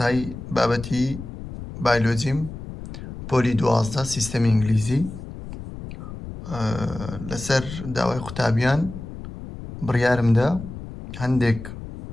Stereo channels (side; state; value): left; noise; rumble, 11 dB below the sound